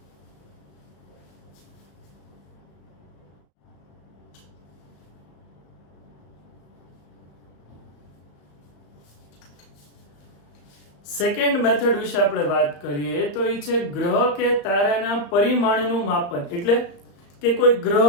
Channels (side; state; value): right; late; 34 ms